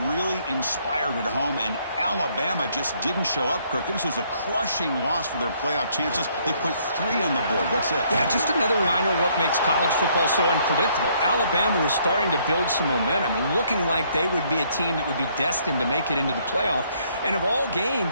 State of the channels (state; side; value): inverted; both; correlation -0.67